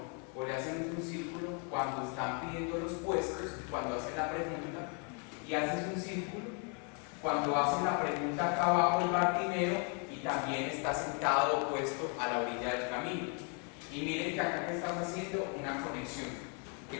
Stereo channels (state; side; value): quieter; right; 38.2 dB